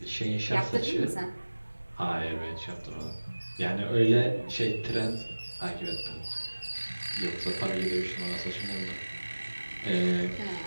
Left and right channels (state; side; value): inverted; both; correlation -1.00